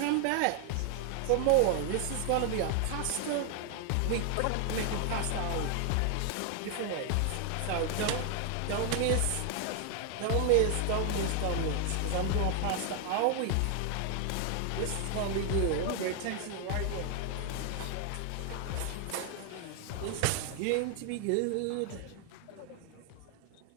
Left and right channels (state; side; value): different; both; correlation 0.00